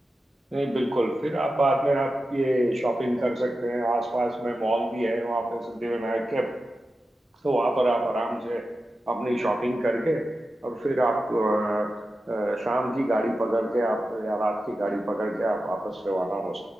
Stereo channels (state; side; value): normal; both; correlation 0.92